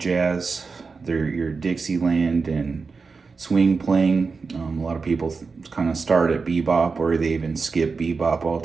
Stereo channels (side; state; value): left; quieter; 4.7 dB